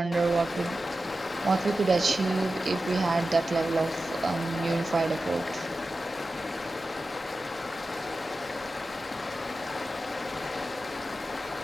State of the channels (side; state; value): both; normal; correlation 0.93